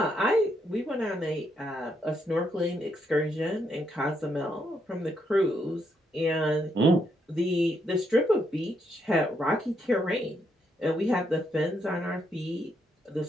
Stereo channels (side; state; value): both; normal; correlation 0.77